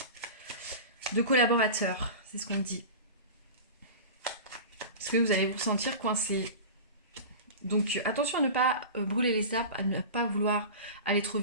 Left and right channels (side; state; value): both; inverted; correlation -0.31